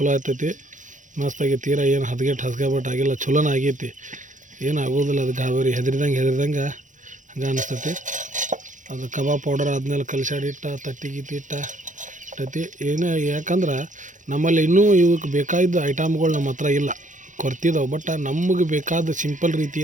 ಆಗ್ತೈತಿ, ಮಸ್ತಾಗಿ. ತೀರಾ ಏನು ಹಸ್ಗೆಬಟ್ಟು ಆಗಿಲ್ಲ, ಚಲೋನ ಆಗೈತಿ. ಏನು ಆಗೋದಿಲ್ಲ. ಅದು ಗಾಬರಿ ಹೆದರಿದಂಗೆ ಹಂಗೆ ಅನಿಸ್ತೈತಿ. ಅದು ಕಬಾಬ್ ಪೌಡರ್ ಆದ್ಮೇಲೆ ಕಲಸಾಡಿ ತತ್ತಿ ಏನೇ, ಯಾಕಂದ್ರೆ ನಮ್ಮಲ್ಲಿ ಇನ್ನೂ ಇವಕ್ಕೆ ಬೇಕಾದ ಐಟಮ್ಗಳು ನಮ್ಮ ಹತ್ರ ಇಲ್ಲ, ಕೊರ್ತಿದ್ದಾವೆ. ಬಟ್ ನಮಗೆ ಬೇಕಾದ ಸಿಂಪಲ್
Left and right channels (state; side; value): late; left; 0.37 ms